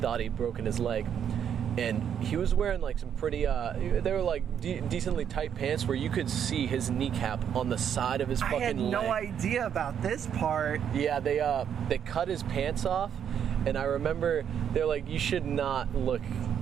he'd broken his leg. And he was wearing like some pretty, they were like decently tight pants where you could see his kneecap on the side of his fucking leg. I had no idea about this part. Yeah, they cut his pants off, and I remember they're like, you should not look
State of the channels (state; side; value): quieter; left; 8.6 dB